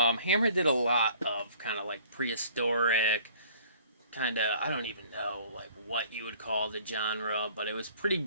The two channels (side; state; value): both; inverted; correlation -0.53